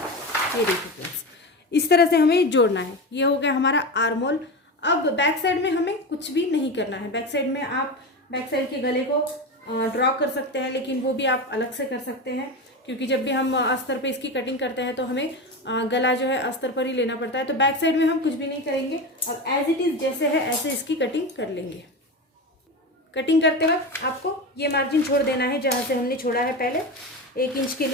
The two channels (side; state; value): both; normal; correlation 0.22